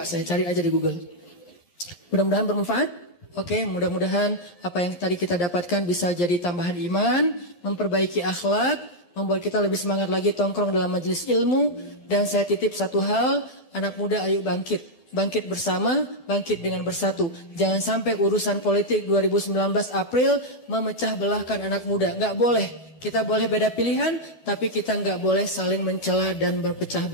saya cari aja di Google. Mudah-mudahan bermanfaat. Oke, mudah-mudahan apa yang tadi kita dapatkan bisa jadi tambahan iman, memperbaiki akhlak, membuat kita lebih semangat lagi tongkrong dalam majelis ilmu. Dan saya titip satu hal, anak muda ayo bangkit. Bangkit bersama, bangkit dengan bersatu. Jangan sampai urusan politik 2019 April memecah belahkan anak muda. Nggak boleh. Kita boleh beda pilihan, tapi kita nggak boleh saling mencela dan berpecah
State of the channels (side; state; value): right; late; 1.7 ms